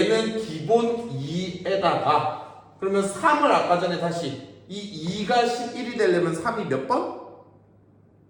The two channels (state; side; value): identical; both; correlation 1.00